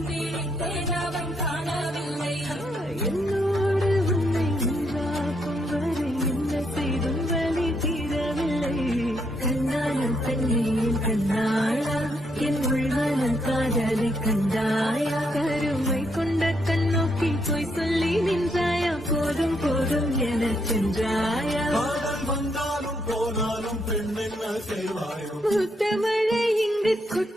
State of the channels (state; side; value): normal; both; correlation 0.76